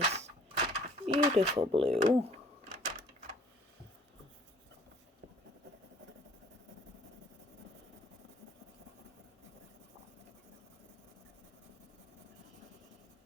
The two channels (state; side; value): normal; both; correlation 0.55